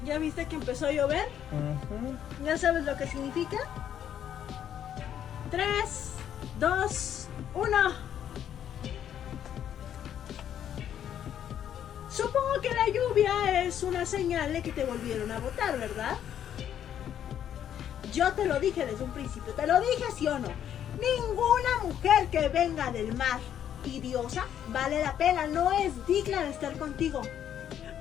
¿ya viste que empezó a llover? ¿Ya sabes lo que significa? 3, 2, 1. Supongo que la lluvia es una señal de que te volvieron a votar, ¿verdad? Yo te lo dije desde un principio, te lo dije, ¿sí o no? Ninguna mujer que venga del mar y diosa vale la pena, no es digna de estar contigo.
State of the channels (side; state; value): right; quieter; 9.9 dB